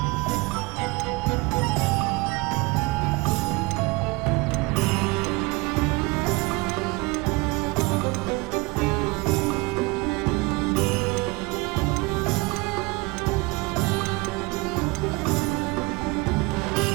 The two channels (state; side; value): quieter; left; 25.0 dB